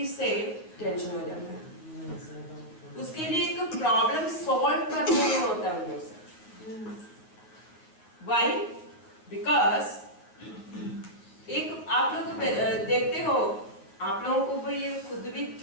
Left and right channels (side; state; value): right; late; 9.6 ms